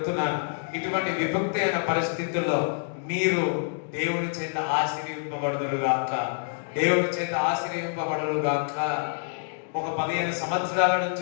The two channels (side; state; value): right; silent; digital silence